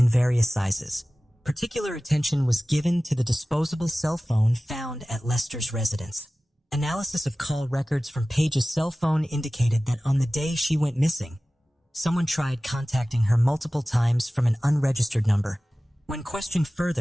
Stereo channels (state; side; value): normal; both; correlation 0.97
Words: various sizes. Particular attention was given to the disposable cell phone found at Lester's residence. Analysis of call records from Paige's cell phone indicated that on the day she went missing, someone tried contacting her multiple times from an unregistered number. When questioned